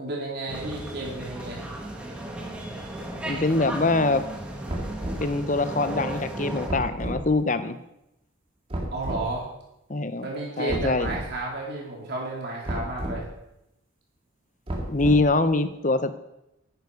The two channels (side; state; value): both; normal; correlation 0.29